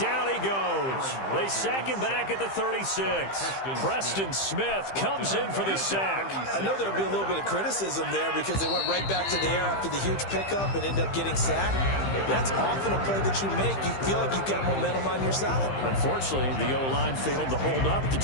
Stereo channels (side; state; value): right; late; 15 ms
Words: he goes. They sack him back at the 36. Preston Smith comes in for the sack. I know there would be a little bit of criticism there because they went right back to the air after the huge pickup and end up getting sacked. That's often a play that you make. You feel like you've got momentum on your side. Unfortunately, the O-line failed to hold up to